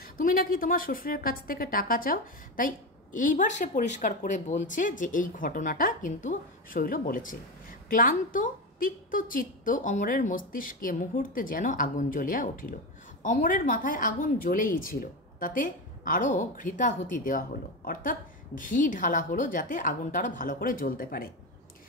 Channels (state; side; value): normal; both; correlation 0.18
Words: তুমি নাকি তোমার শ্বশুরের কাছ থেকে টাকা চাও, তাই এইবার সে পরিষ্কার করে বলছে যে এই ঘটনাটা কিন্তু শৈল বলেছে। ক্লান্ত তিক্ত চিত্ত অমরের মস্তিষ্কে মুহূর্তে যেন আগুন জ্বলিয়া উঠিল। অমরের মাথায় আগুন জ্বলেই ছিল, তাতে আরও ঘৃতাহুতি দেওয়া হলো, অর্থাৎ ঘি ঢালা হলো যাতে আগুনটা আরও ভালো করে জ্বলতে পারে।